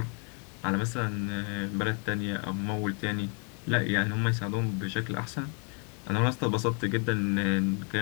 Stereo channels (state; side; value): quieter; right; 38.7 dB